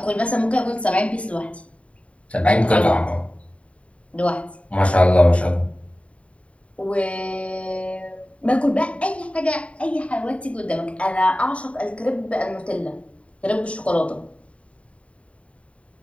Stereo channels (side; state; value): right; late; 0.063 ms